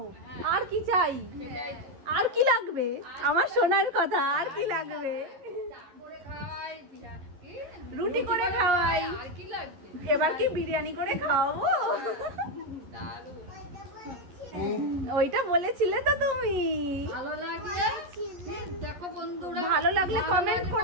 আর কি চাই, আর কি লাগবে? আমার সোনার কথা, আর কি লাগবে? রুটি করে খাওয়াই, এবার কি বিরিয়ানি করে খাওয়াবো? ওইটা বলেছিলে তো তুমি। ভালো লাগলে কমেন্ট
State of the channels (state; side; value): late; left; 11 ms